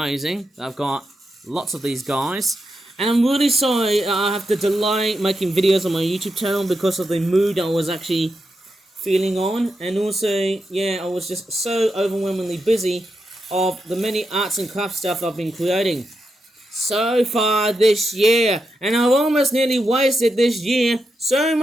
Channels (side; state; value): both; normal; correlation 0.86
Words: I've got lots of these guys. And I'm really sorry I have to delay making videos on my YouTube channel because of the mood I was actually feeling on. And also, yeah, I was just so overwhelmingly busy of the many arts and crafts stuff I've been creating so far this year, and I've almost nearly wasted this year, so